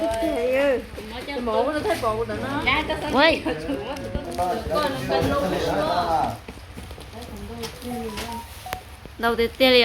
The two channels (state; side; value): identical; both; correlation 1.00